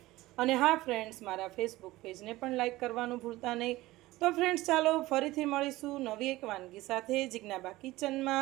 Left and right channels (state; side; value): quieter; left; 18.2 dB